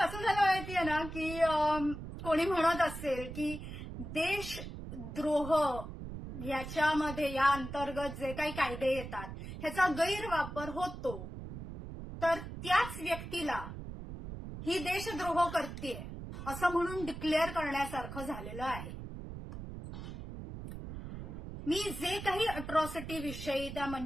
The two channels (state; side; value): noise; right; rumble, 9 dB below the sound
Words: झालं माहितीये ना की कोणी म्हणत असेल की देशद्रोह याच्यामध्ये या अंतर्गत जे काही कायदे येतात ह्याचा गैरवापर होतो, तर त्याच व्यक्तीला ही देशद्रोह करतेय असं म्हणून डिक्लेअर करण्यासारखं झालेलं आहे. मी जे काही अट्रॉसिटी विषयी त्या